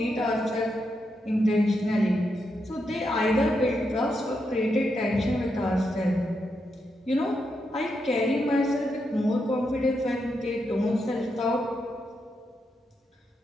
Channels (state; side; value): normal; both; correlation 0.83